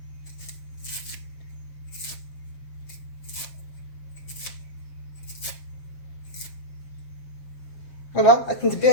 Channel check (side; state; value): right; late; 7.6 ms